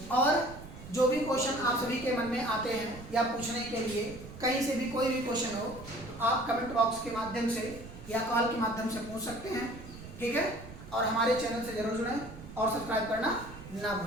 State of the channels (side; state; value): right; noise; rumble, 14 dB below the sound